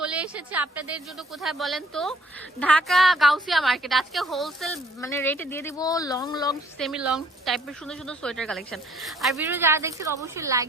এসেছে আপনাদের জন্য কোথায় বলেন তো, ঢাকা গাউসিয়া মার্কেট। আজকে হোলসেল মানে রেটে দিয়ে দিব লং লং সেমি লং টাইপের সুন্দর সুন্দর সোয়েটার কালেকশন। আর ভিডিও যারা দেখছেন অবশ্যই লাইক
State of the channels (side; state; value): both; normal; correlation 0.59